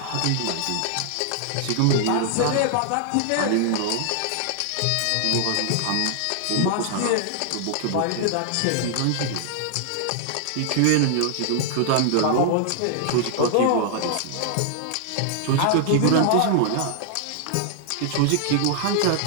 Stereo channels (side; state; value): both; different; correlation 0.00